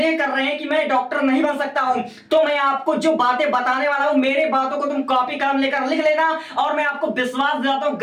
कर रहे हैं कि मैं डॉक्टर नहीं बन सकता हूं, तो मैं आपको जो बातें बताने वाला हूं, मेरे बातों को तुम कॉपी कलम लेकर लिख लेना और मैं आपको विश्वास दिलाता हूं,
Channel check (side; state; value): both; identical; correlation 1.00